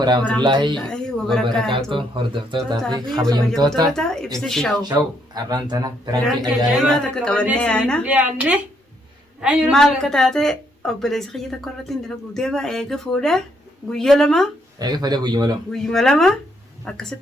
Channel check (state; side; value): normal; both; correlation 0.73